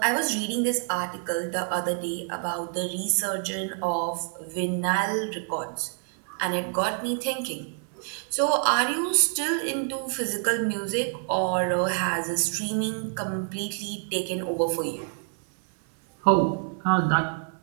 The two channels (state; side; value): silent; left; 58 dB below the other